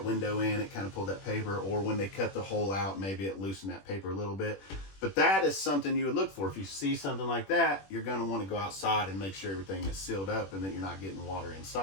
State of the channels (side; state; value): right; late; 21 ms